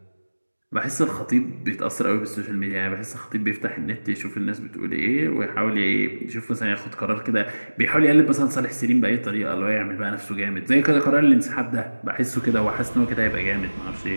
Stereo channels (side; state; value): both; inverted; correlation -1.00